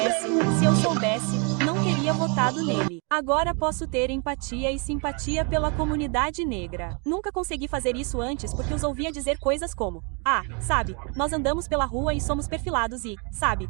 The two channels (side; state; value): left; quieter; 35.1 dB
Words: eu soubesse, não teria votado nele. Agora posso ter empatia e simpatia pela comunidade negra. Nunca consegui fazer isso antes porque os ouvia dizer coisas como: ah, sabe, nós andamos pela rua e somos perfilados e, sabe,